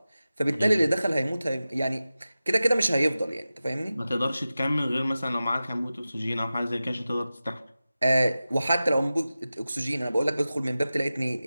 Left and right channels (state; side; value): inverted; both; correlation -0.94